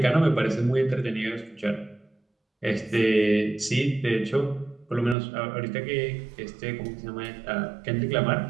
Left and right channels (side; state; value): left; drops out; at 5.2 s